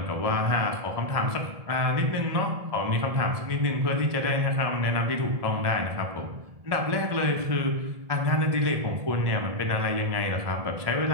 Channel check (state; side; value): late; left; 1.7 ms